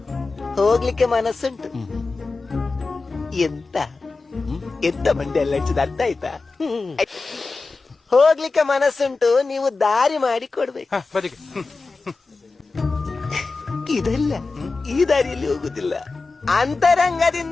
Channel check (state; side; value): quieter; right; 3.9 dB